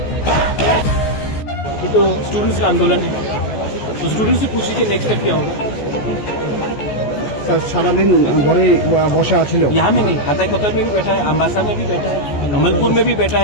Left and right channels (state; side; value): late; right; 14 ms